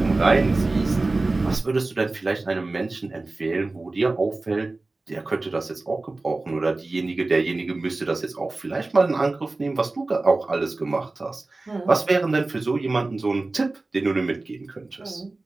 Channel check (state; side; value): quieter; left; 3.2 dB